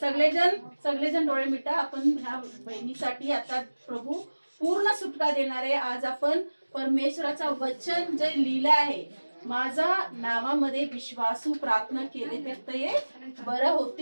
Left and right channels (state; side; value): inverted; both; correlation -1.00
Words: सगळेजण डोळे मिटा. आपण ह्या बहिणीसाठी आता प्रभू पूर्ण सुटका देणार आहे. आज आपण परमेश्वराचं वचन जे लिहिलं आहे, माझा नावामध्ये विश्वासू प्रार्थना केले तर ते बरं